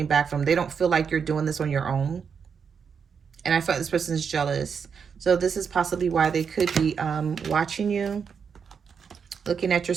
back from them. They don't feel like you're doing this on your own. And I feel like this person is jealous. So this is possibly why they could be watching you, looking at your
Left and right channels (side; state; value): left; quieter; 6.5 dB